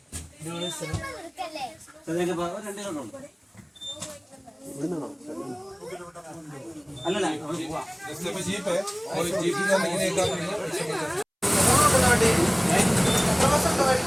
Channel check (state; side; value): identical; both; correlation 1.00